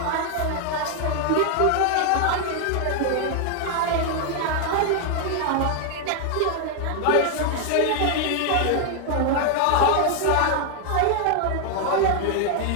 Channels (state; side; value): different; both; correlation 0.00